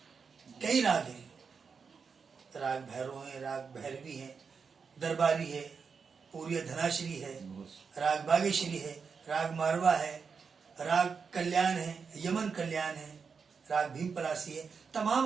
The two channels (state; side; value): quieter; left; 5.6 dB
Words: कई राग हैं। राग भैरव है, राग भैरवी है, दरबारी है, पूरी धनाश्री है, राग बागेश्वरी है, राग मारवा है, राग कल्याण है, यमन कल्याण है, राग भीम पलासी है,